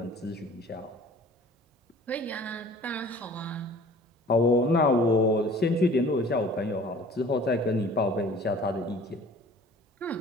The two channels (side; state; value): both; normal; correlation 0.48